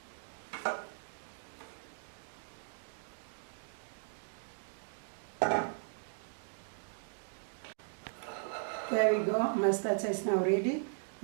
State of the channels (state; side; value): silent; left; digital silence